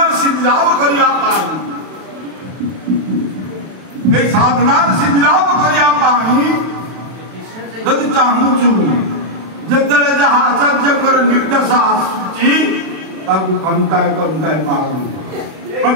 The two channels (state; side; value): late; left; 32 ms